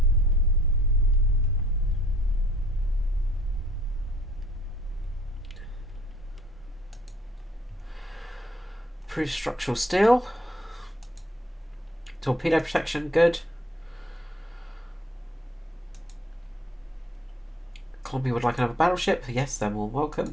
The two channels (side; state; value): both; normal; correlation 0.61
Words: Improved structural steel. Torpedo protection, good. Columbia would like another battleship. Yes, they're more